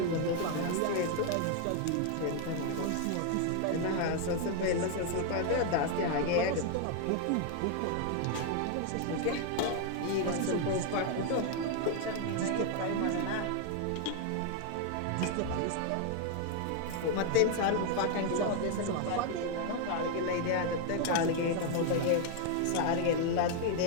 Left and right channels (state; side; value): different; both; correlation 0.00